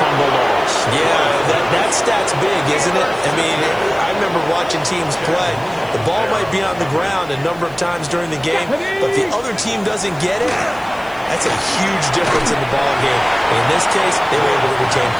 loss. Yeah, that stat's big, isn't it? I mean, I remember watching teams play. The ball might be on the ground a number of times during the game, but the other team doesn't get it. That's a huge difference in the ball game. And in this case, they were able to retain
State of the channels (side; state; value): left; noise; hiss, 26 dB below the sound